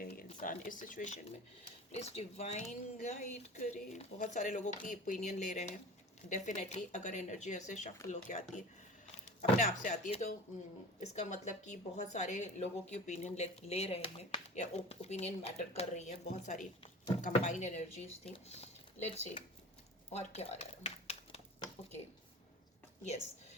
हैं ये इंसान इस सिचुएशन में। प्लीज डिवाइन गाइड करे। बहुत सारे लोगों की ओपिनियन ले रहे हैं डेफिनेटली। अगर एनर्जी ऐसे शफल होके आती है, अपने आप से आती है, तो इसका मतलब कि बहुत सारे लोगों की ओपिनियन ले रहे हैं, या ओपिनियन मैटर कर रही है। बहुत सारी कंबाइंड एनर्जीज थी। लेट्स सी और क्या आ रहा है। ओके, यस,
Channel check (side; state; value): both; normal; correlation 0.38